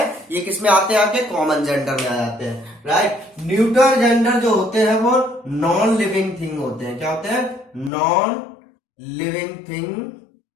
ये किस में आते हैं, आपके कॉमन जेंडर में आ जाते हैं। राइट, न्यूट्रल जेंडर जो होते हैं वो नॉन लिविंग थिंग होते हैं। क्या होते हैं, नॉन लिविंग थिंग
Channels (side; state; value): right; drops out; at 7.9 s